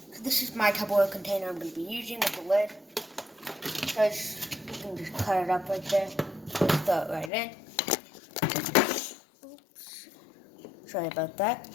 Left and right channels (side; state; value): right; drops out; at 7.3 s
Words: So this is my Tupperware container I'm going to be using with the lid. So you can just cut it up right there. Just throw it right in. Oops. Sorry about that.